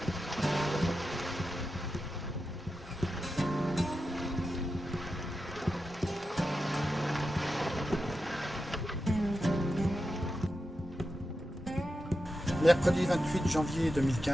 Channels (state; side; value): normal; both; correlation 0.90